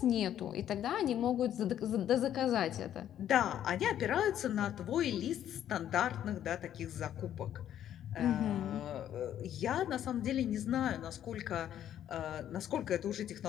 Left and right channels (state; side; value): quieter; right; 10.8 dB